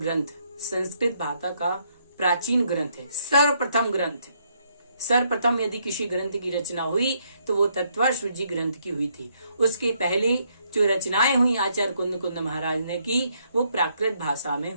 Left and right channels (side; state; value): both; inverted; correlation -0.72